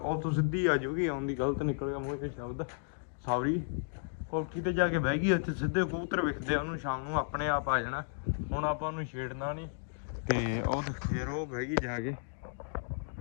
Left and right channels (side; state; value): right; silent; digital silence